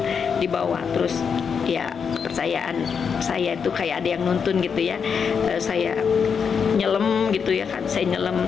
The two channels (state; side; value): quieter; right; 6.4 dB